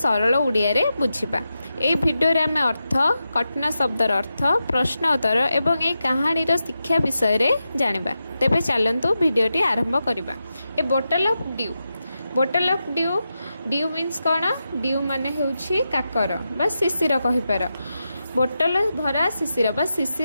उड़िया रे बुझिबा। ए भिडियो रे आम अर्थ, कठिन शब्दर अर्थ, प्रश्न उत्तर एवं ए कहानी रो शिक्षा विषय रे जानिबा। तेबे चलंतु भिडियोटी आरंभ करिबा। A bottle of dew, bottle of dew, dew means कौन? ड्यू माने हेउछि काकर बा शिशिर कहि पार। बोटल भरा शिशिर बा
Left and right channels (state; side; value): inverted; both; correlation -0.89